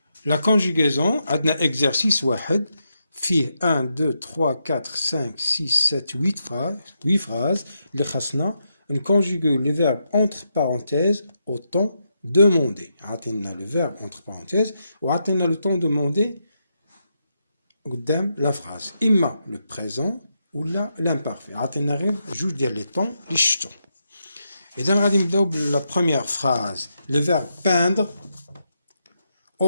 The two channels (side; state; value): both; inverted; correlation -0.83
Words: La conjugaison عندنا exercice واحد فيه 1 2 3 4 5 6 7 8 phrases اللي خاصنا نكونجوغيو les verbes entre parenthèses au temps demandé. عطينا le verbe entre parenthèses وعطينا le temps demandé قدام la phrase. إما le présent ولا l'imparfait. عطينا غير جوج ديال لي طون اللي شفتو. إذا غادي نبداو بلا première phrase. Le verbe peindre